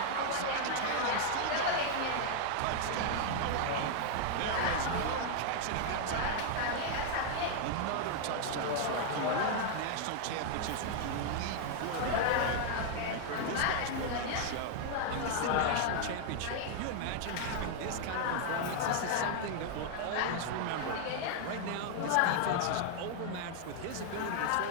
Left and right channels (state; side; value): different; both; correlation 0.00